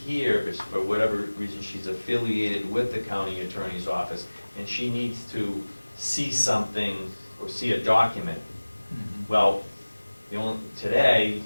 but for whatever reason, she's affiliated with the county attorney's office, and she needs to see something or see a document. Mhm. Well, today,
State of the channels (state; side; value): inverted; both; correlation -1.00